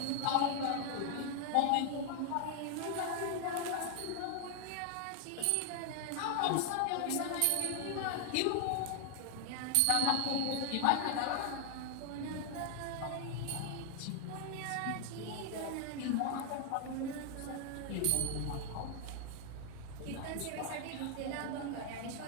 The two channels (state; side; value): different; both; correlation 0.00